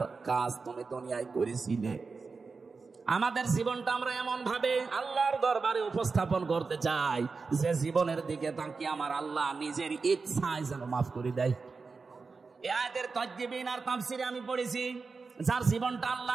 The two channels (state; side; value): quieter; left; 4.5 dB